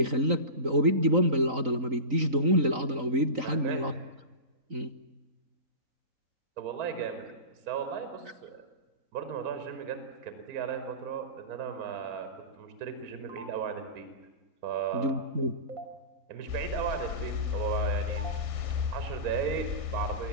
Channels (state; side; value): late; left; 3.9 ms